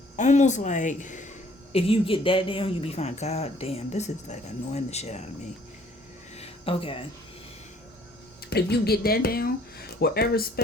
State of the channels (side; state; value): both; normal; correlation 0.59